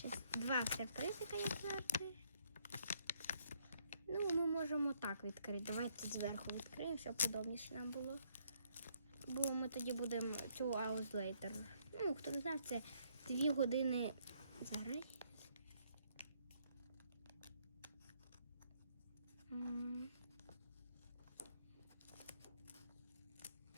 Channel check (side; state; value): both; inverted; correlation -0.70